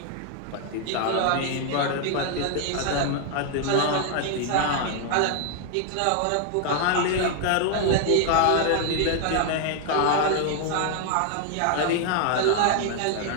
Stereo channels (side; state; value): both; different; correlation 0.00